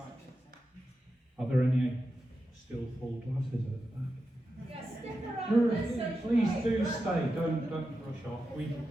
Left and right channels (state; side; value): normal; both; correlation 0.90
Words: Are there any still full glasses at the back? Yeah, stick around. Let's socialise. Please do stay. Don't rush off.